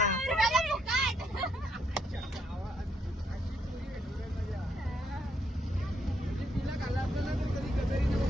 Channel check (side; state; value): both; normal; correlation 0.75